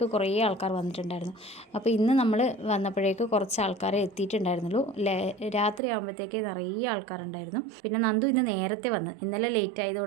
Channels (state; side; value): drops out; left; at 5.8 s